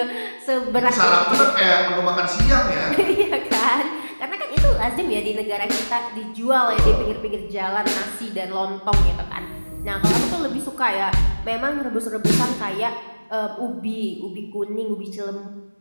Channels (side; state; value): both; inverted; correlation -1.00